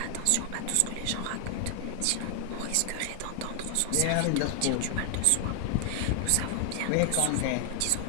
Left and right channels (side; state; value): both; different; correlation 0.00